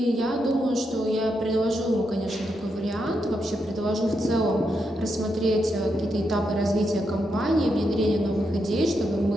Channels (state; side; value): normal; both; correlation 0.83